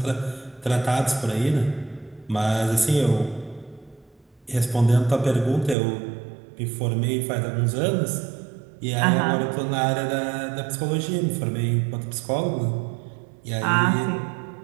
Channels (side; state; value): left; drops out; at 5.8 s